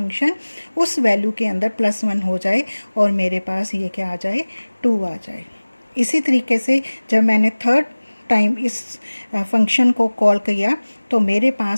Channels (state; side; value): inverted; both; correlation -1.00